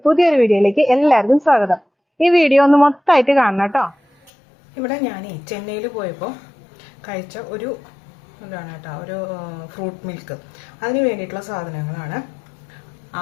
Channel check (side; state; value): right; drops out; at 4.3 s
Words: പുതിയൊരു വീഡിയോയിലേക്ക് എല്ലാവർക്കും സ്വാഗതം. ഈ വീഡിയോ ഒന്ന് മൊത്തമായിട്ട് കാണണം കേട്ടോ. ഇവിടെ ഞാൻ ചെന്നൈയിൽ പോയപ്പോൾ കഴിച്ച ഒരു ഒരു ഫ്രൂട്ട് മിൽക്ക്, അതിന് വേണ്ടിയിട്ടുള്ള സാധനങ്ങളാണ്.